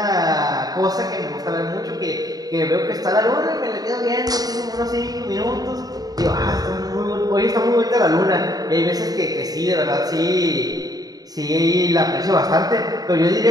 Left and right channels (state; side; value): late; left; 0.18 ms